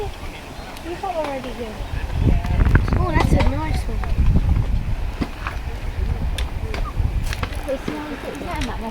You got already here. Oh, that's a nice one.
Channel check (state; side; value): identical; both; correlation 1.00